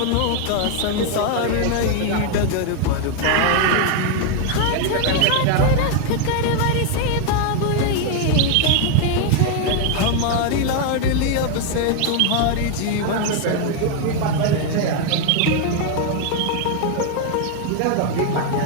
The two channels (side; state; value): both; different; correlation 0.00